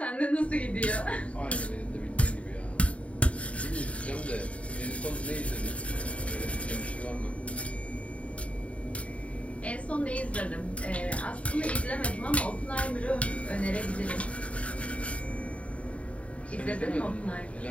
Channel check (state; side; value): late; right; 0.065 ms